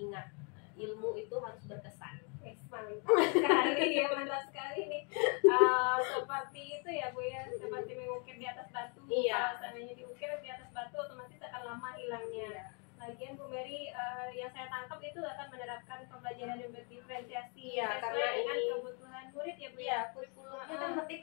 ilmu itu harus berkesan. Mantap sekali ya, mantap sekali nih. Seperti itu ya Bu ya, seperti mengukir di atas batu. Iya. Kalau seandainya diukir di atas batu otomatis akan lama hilangnya. Lagian Bu Mary yang saya tangkap itu akan menerapkan pembelajaran yang berdiferensiasi. Iya, sesuai karena dengan ini kebutuhan murid ya Bu ya. Iya, kurikulumnya kan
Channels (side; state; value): right; quieter; 36.4 dB